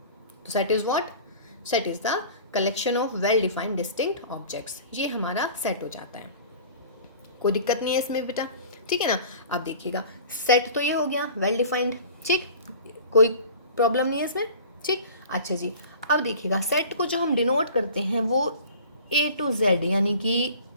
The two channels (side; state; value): both; inverted; correlation -0.43